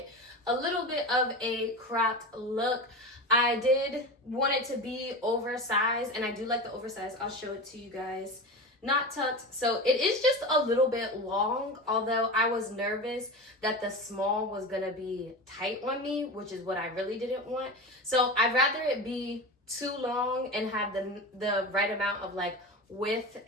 a little bit of a cropped look. I did want it to be oversized, and I do like the oversized. I'll show it to you guys. Not tucked, so it is just a little bit long, although I was nervous that the small was gonna be tight on me, which is what I really didn't want. So I'd rather it be too long and have the right amount of width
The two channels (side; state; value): both; normal; correlation 0.27